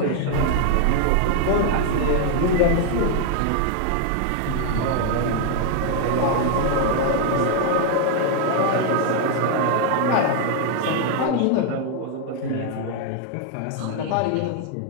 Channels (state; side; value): different; both; correlation 0.00